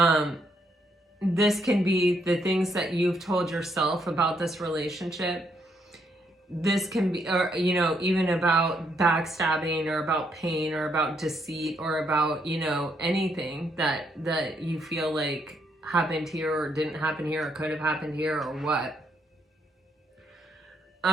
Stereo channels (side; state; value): both; normal; correlation 0.74